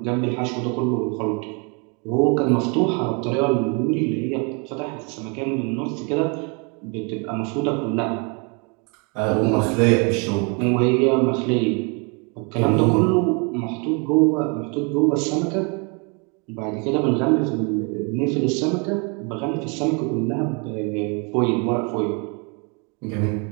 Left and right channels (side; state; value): left; quieter; 33.8 dB